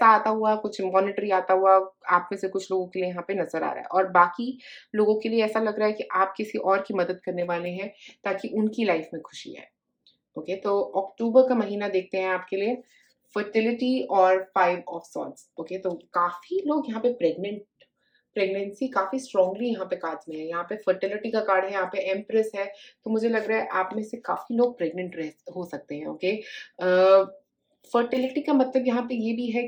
आता हुआ, कुछ मॉनेटरी आता हुआ आप में से कुछ लोगों के लिए यहाँ पे नज़र आ रहा है। और बाकी लोगों के लिए ऐसा लग रहा है कि आप किसी और की मदद करने वाले हैं ताकि उनकी लाइफ में खुशी आए। ओके, तो अक्टूबर का महीना देखते हैं आपके लिए फर्टिलिटी और 5 ऑफ सॉर्ड्स। ओके, तो काफ़ी लोग यहाँ पे प्रेगनेंसी काफ़ी स्ट्रांगली यहाँ पे कार्ड्स में है। यहाँ पे फर्टिलिटी का कार्ड है, यहाँ पे एम्प्रेस है, तो मुझे लग रहा है आप में से काफ़ी लोग प्रेग्नेंट रह हो सकते हैं। ओके, फर्टिलिटी का मतलब यहाँ पे ये भी है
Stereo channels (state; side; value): identical; both; correlation 1.00